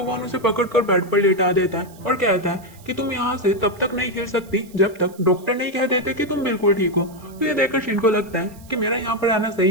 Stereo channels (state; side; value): noise; right; hiss, 25 dB below the sound